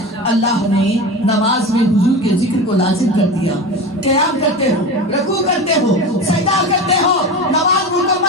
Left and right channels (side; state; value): both; normal; correlation 0.27